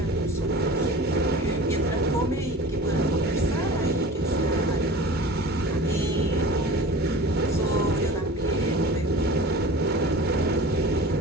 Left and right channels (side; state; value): both; normal; correlation 0.38